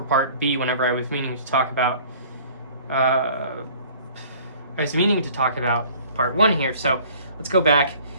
part B whenever I was meaning to talk about part 1 here. So let's go back.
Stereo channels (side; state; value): both; inverted; correlation -0.52